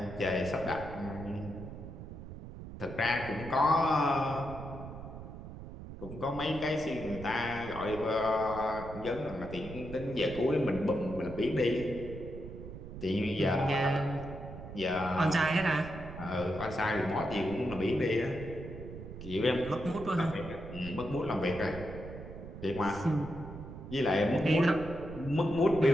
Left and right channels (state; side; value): noise; right; rumble, 11 dB below the sound